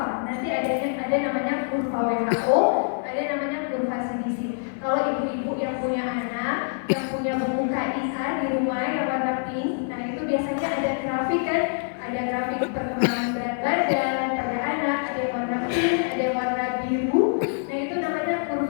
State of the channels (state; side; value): silent; right; digital silence